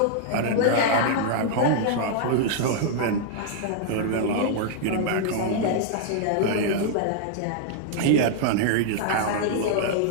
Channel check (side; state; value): both; different; correlation -0.01